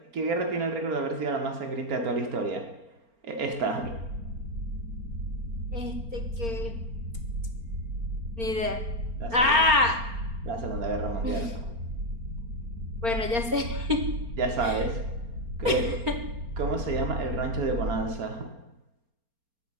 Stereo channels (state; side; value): late; left; 4.3 ms